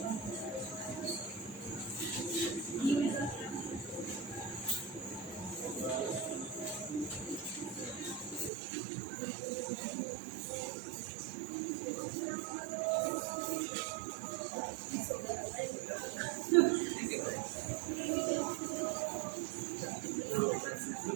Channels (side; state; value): left; drops out; at 8.5 s